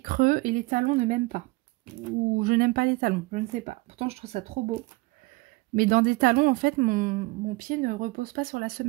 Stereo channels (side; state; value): left; quieter; 23.4 dB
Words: creux et les talons ne m'aiment pas. Ou je n'aime pas les talons, je ne sais pas. Pourtant, je trouve ça trop beau. Mais dans des talons, en fait, mon pied ne repose pas sur la